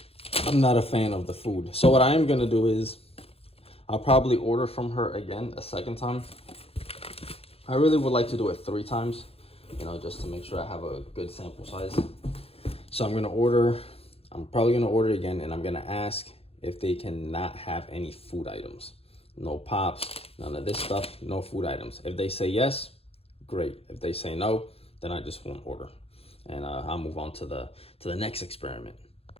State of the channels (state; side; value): late; right; 0.28 ms